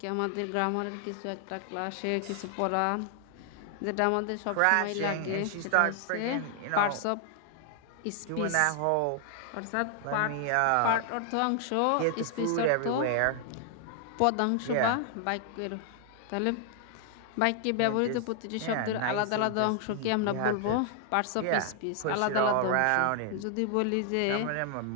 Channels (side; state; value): both; different; correlation 0.00